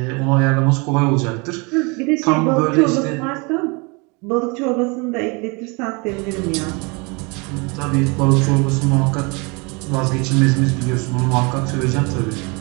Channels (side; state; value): left; quieter; 29.6 dB